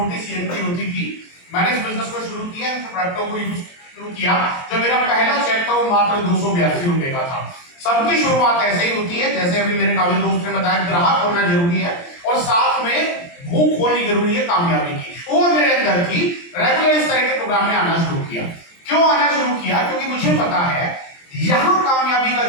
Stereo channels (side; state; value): right; late; 23 ms